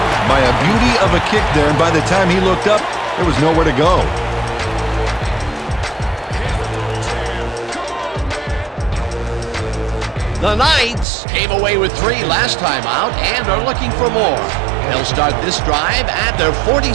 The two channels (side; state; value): left; drops out; at 11.1 s